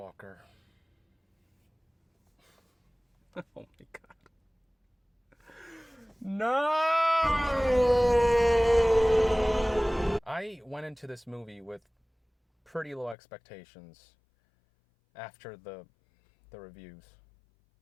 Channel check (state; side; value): drops out; right; at 13.2 s